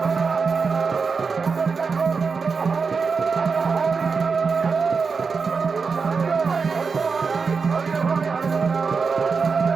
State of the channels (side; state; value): left; quieter; 5.1 dB